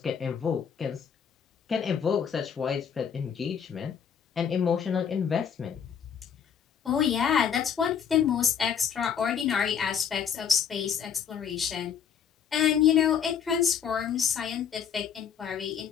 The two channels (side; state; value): right; quieter; 7.6 dB